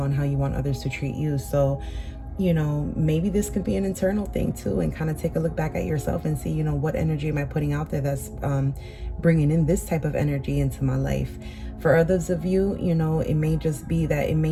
how you want others to treat you. So, maybe this could be an internal thing too, and kind of take a look back at yourself and see, what energy am I putting out there that's bringing in this type of energy into my life. For others of you, it may just be that it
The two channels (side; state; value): both; identical; correlation 1.00